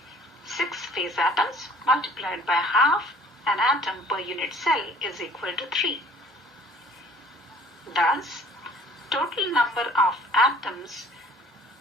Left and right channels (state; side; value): normal; both; correlation 0.53